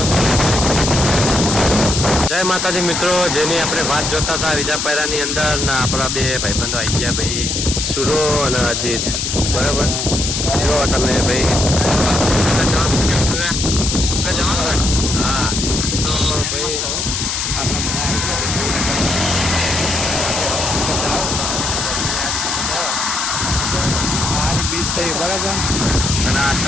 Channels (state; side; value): noise; left; hiss, 1 dB below the sound